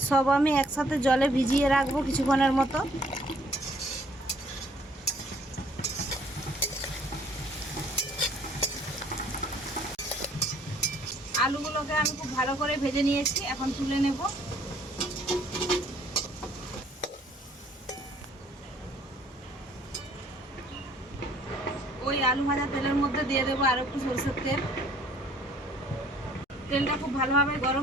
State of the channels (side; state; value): both; normal; correlation 0.60